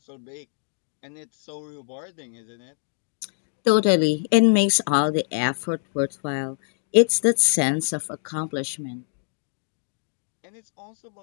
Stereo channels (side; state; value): right; silent; digital silence